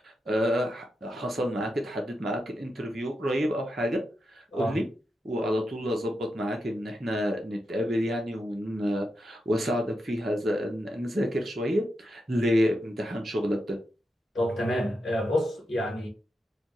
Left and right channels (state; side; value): normal; both; correlation 0.86